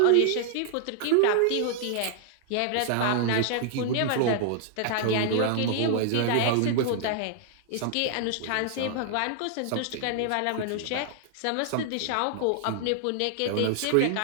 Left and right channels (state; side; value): different; both; correlation -0.01